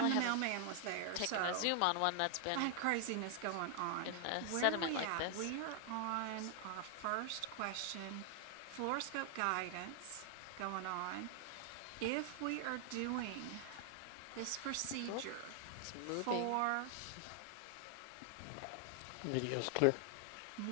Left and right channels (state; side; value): different; both; correlation 0.00